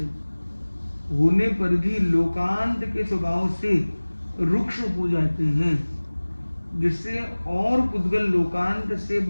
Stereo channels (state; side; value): inverted; both; correlation -1.00